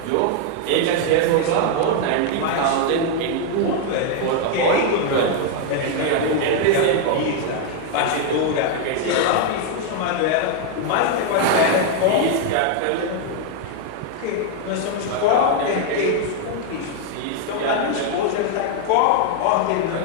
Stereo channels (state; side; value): different; both; correlation 0.00